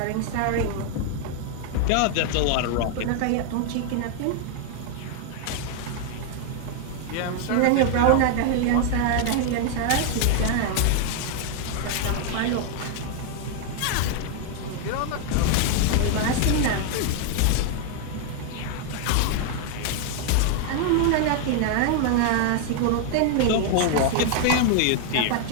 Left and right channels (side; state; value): both; different; correlation 0.00